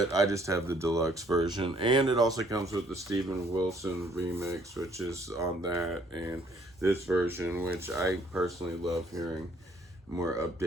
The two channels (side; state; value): both; normal; correlation 0.63